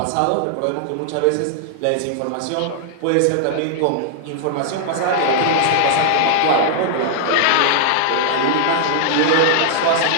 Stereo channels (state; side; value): different; both; correlation -0.01